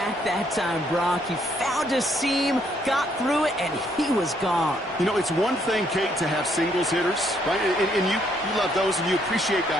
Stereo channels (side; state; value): both; normal; correlation 0.70